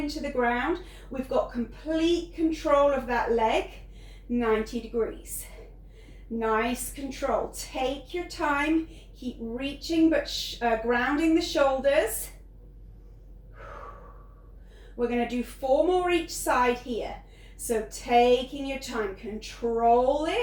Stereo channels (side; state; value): both; identical; correlation 1.00